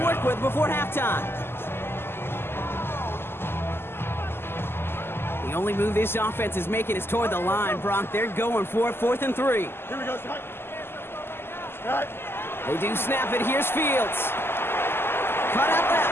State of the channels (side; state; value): right; late; 0.11 ms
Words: with before halftime. The only move this offense is making is toward the line, Brock. They're going for it, 4th and 3. Here we go, Scott. Scott. They do snap it. Here's Fields. Cut out